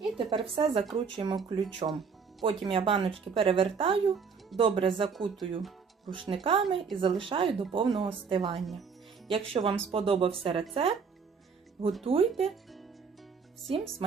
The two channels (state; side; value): quieter; left; 5.7 dB